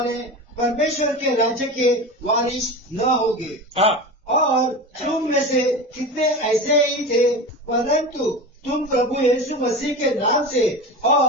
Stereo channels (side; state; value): both; normal; correlation 0.28